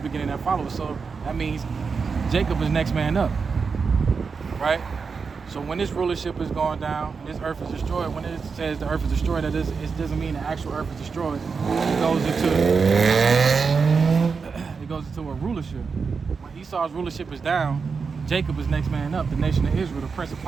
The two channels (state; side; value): quieter; left; 5.2 dB